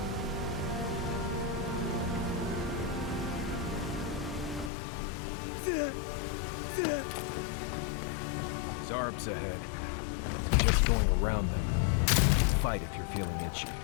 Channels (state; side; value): drops out; right; at 4.7 s